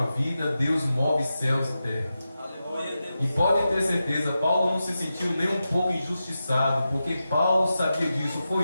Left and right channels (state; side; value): inverted; both; correlation -0.91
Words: vida, Deus move céus e terra. E pode ter certeza, Paulo não se sentiu nem um pouco injustiçado, porque Paulo sabia disso.